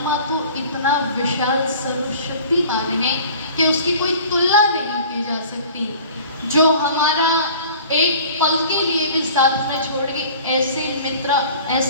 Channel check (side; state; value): both; inverted; correlation -0.45